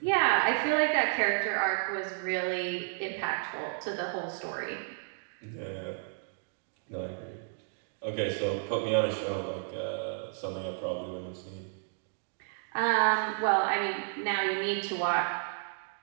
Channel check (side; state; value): left; silent; digital silence